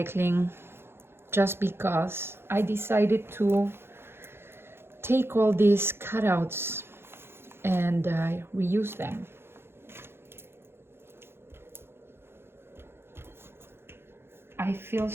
just because, I decided to take all these cutouts and reuse them. I feel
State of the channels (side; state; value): left; late; 0.11 ms